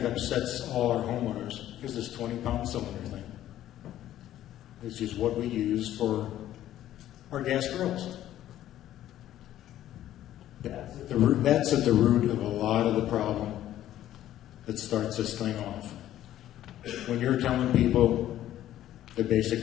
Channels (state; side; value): quieter; right; 12.7 dB